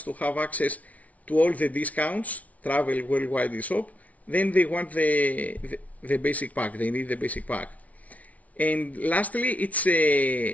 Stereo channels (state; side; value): late; right; 0.069 ms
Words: to have access to all the discounts, travel, worldwide eShop, then they want the basic pack. They need the basic pack. And lastly, it's